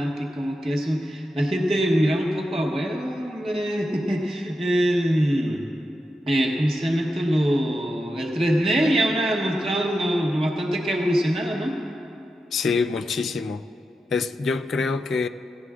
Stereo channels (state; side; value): normal; both; correlation 0.88